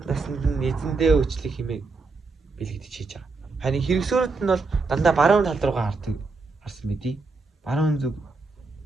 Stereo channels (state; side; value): quieter; left; 3.9 dB